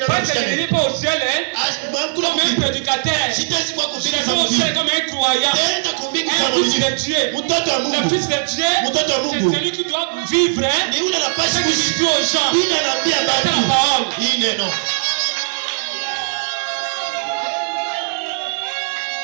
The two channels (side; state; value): left; silent; digital silence